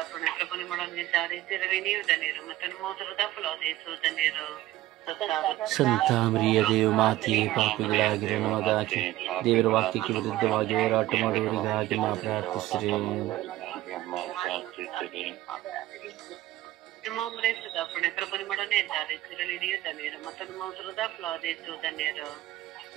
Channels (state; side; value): quieter; left; 15.9 dB